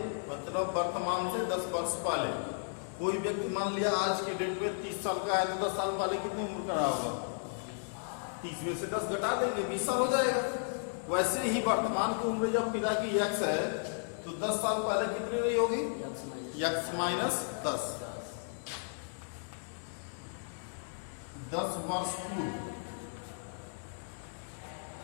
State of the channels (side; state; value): right; silent; digital silence